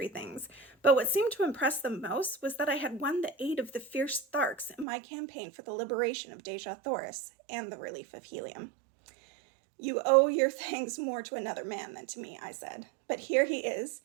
things, but what seemed to impress them most was that I had won the aid of the fierce Tharks in my campaign for the liberation of Deja Thoris and the relief of Helium. "You owe your thanks more to another man than to me," I said, "but here he is.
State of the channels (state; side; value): drops out; left; at 4.9 s